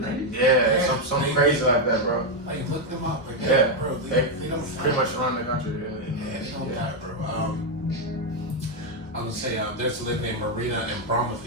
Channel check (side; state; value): both; normal; correlation 0.03